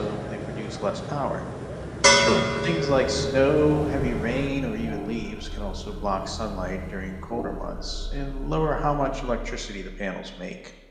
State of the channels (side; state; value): both; identical; correlation 1.00